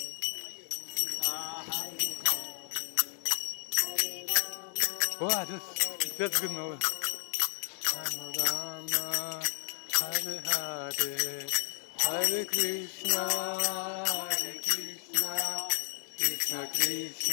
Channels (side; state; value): right; silent; 56 dB below the other